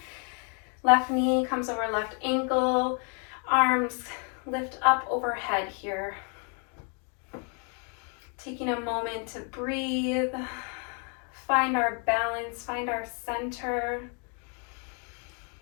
Left knee comes over left ankle, arms lift up overhead here. Taking a moment to breathe, find our balance, find our center.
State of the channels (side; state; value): right; quieter; 38.8 dB